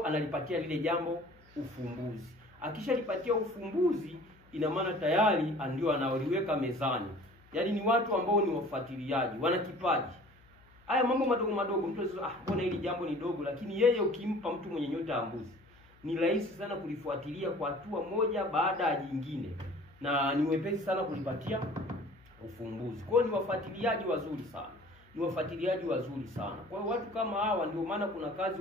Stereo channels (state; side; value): noise; left; hum, 28 dB below the sound